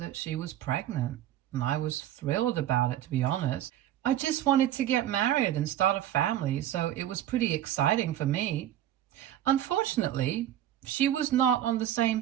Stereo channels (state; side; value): quieter; left; 12.0 dB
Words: she was pregnant, and I was thrilled about it, to be honest. I just wanted to get married and start a family, so it was pretty exciting for me. Unfortunately, she was not on the same